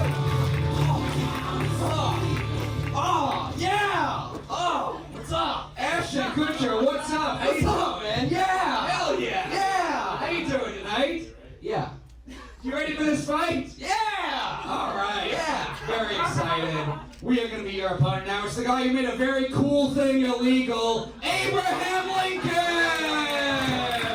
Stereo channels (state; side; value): identical; both; correlation 1.00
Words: What's up? Ashton Kutcher, what's up? How you doing, man? Yeah! Hell yeah! Yeah! How you doing tonight? Yeah. You ready for this fight? Yeah! All right. Yeah! Very excited. We are going to be your opponent now. It's the guy who made a very cool thing illegal, Abraham Lincoln!